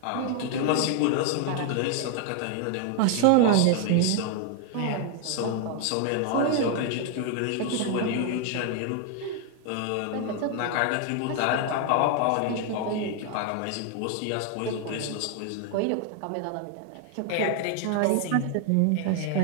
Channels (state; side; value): different; both; correlation 0.00